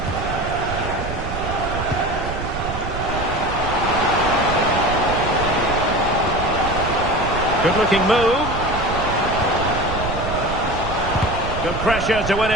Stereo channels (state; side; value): noise; right; rumble, 7 dB below the sound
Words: Good-looking move. Good pressure to win